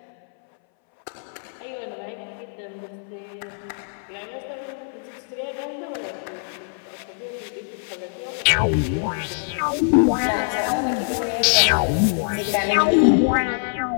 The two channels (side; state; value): right; silent; 63 dB below the other